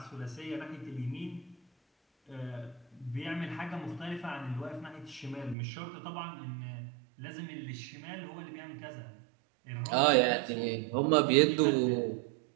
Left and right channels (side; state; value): left; drops out; at 5.6 s